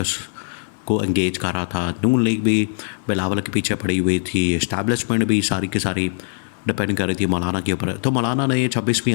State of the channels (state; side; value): silent; right; digital silence